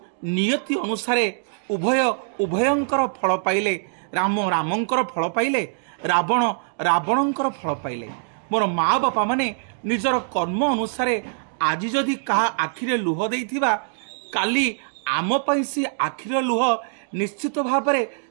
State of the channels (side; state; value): left; silent; digital silence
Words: नियति अनुसारे उभय उभयंकर फल पाइले। राम रामंकर फल पाइले, रावण रावणंकर फल पाइले। मोर माँ बापा माने निजर कर्म अनुसारे आज जदि कहा आखिरे लुह देइथिबा, काली आम पई सी आखिर लुह निश्चित भाव में